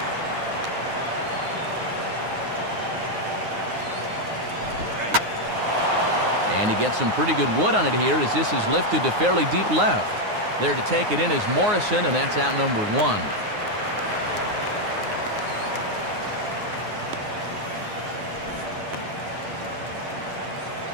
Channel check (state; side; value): late; left; 9.6 ms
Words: And he gets some pretty good wood on it here as this is lifted to fairly deep left. There to take it in is Morrison, and that's out number